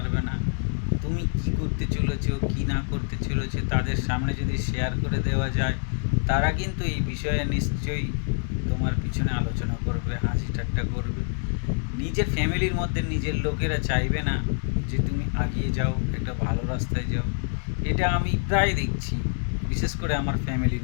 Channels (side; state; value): right; silent; digital silence